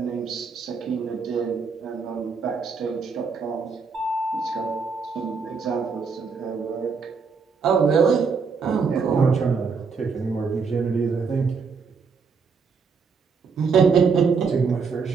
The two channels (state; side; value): quieter; left; 5.3 dB